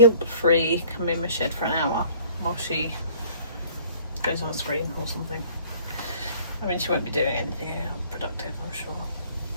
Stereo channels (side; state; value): both; inverted; correlation -0.53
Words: come in my shed for an hour while she goes on a screen or something. I mean, she won't be doing anything productive, I'm sure.